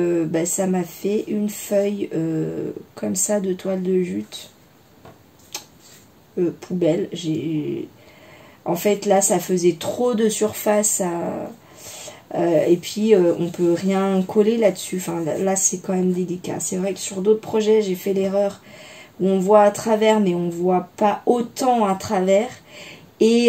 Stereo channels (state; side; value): identical; both; correlation 1.00